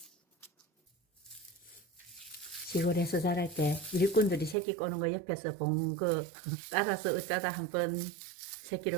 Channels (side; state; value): left; drops out; at 4.5 s